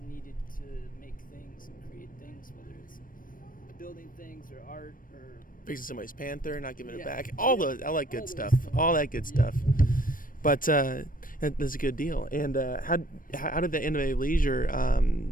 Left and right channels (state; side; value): late; right; 0.40 ms